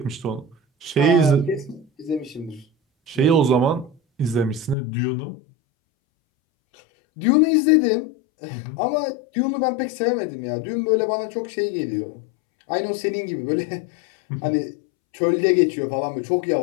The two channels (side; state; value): right; drops out; at 4.8 s